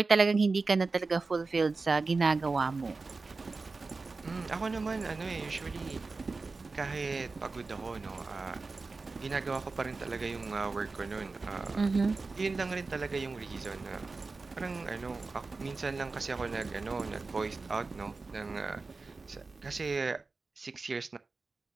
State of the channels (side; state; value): left; quieter; 3.9 dB